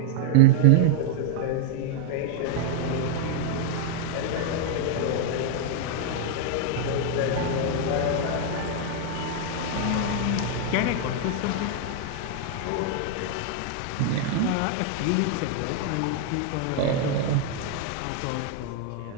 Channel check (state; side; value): different; both; correlation 0.00